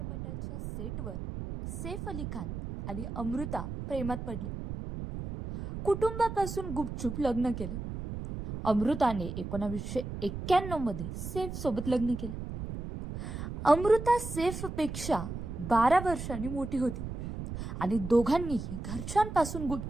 सेटवर सैफ अली खान आणि अमृता प्रेमात पडले. कुटुंबापासून गुपचूप लग्न केलं. अमृताने 1991 मध्ये सैफ सोबत लग्न केलं. अमृता सैफपेक्षा 12 वर्षांनी मोठी होती आणि दोघांनीही घरच्यांपासून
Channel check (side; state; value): right; noise; rumble, 7 dB below the sound